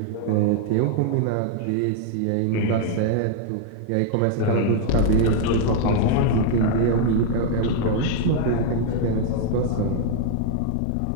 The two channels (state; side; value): different; both; correlation -0.01